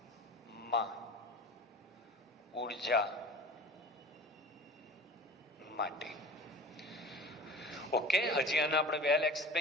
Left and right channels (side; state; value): both; normal; correlation 0.38